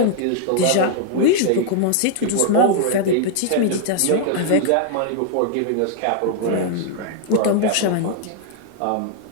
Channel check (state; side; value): different; both; correlation 0.00